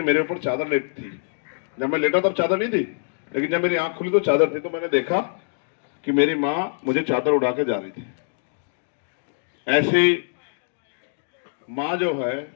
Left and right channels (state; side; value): silent; right; digital silence